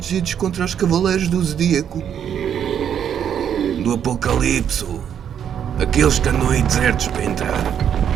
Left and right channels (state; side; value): quieter; left; 8.8 dB